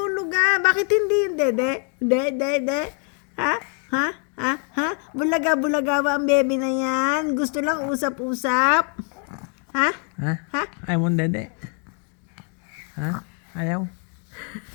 ah. Bakit hindi yung dede? Dede? Ha? Ha? Ha? Ha? Bulaga-bulaga ba ang baby na yan? Gusto lang usap-usap? Ha? Ha? Ha? Ayaw mo dede? Ha? Ayaw?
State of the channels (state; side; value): quieter; right; 39.9 dB